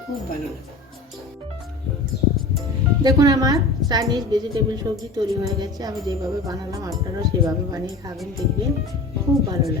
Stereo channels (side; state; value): right; quieter; 3.2 dB